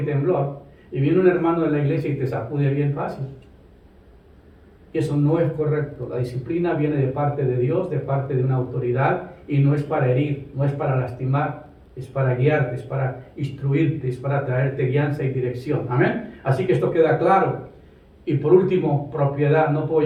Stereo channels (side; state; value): both; identical; correlation 1.00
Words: temblor, y viene un hermano de la iglesia y te sacude bien fácil. Y eso no es correcto. La disciplina viene de parte de Dios, de parte de una autoridad, y no es para herir, no es para lastimar, es para guiarte, es para instruirte, es para traerte guianza y dirección. Amén. Así que esto queda claro. Y por último, propiedad. No